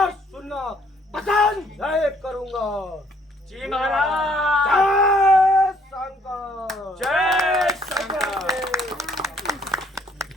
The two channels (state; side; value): normal; both; correlation 0.64